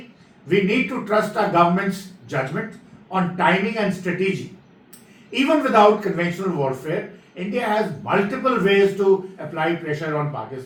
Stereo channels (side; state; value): both; identical; correlation 1.00